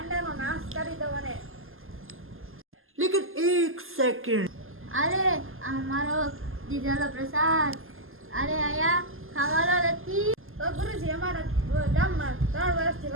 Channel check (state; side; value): late; left; 0.60 ms